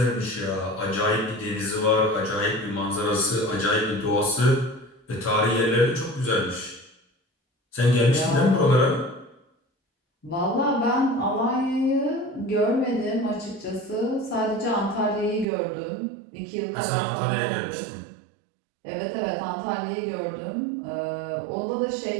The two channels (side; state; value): left; drops out; at 15.5 s